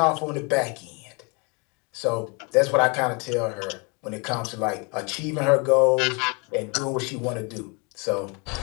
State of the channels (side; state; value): right; quieter; 31.8 dB